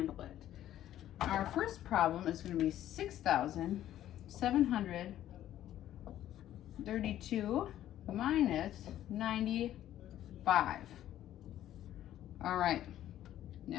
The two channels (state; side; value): quieter; right; 12.4 dB